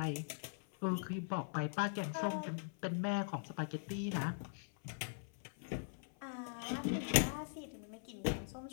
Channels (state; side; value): silent; right; 50 dB below the other